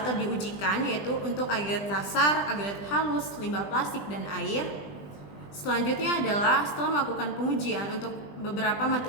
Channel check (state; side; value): late; right; 20 ms